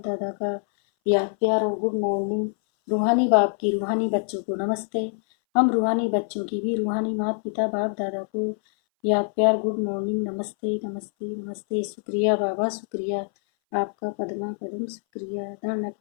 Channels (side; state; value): right; silent; 59 dB below the other